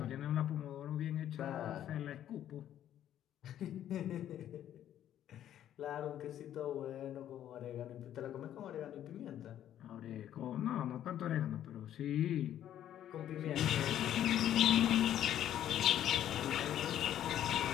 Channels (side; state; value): right; quieter; 11.2 dB